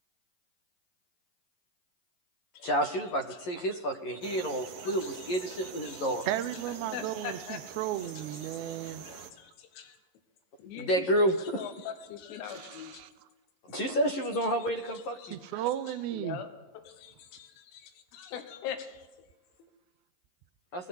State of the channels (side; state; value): right; late; 11 ms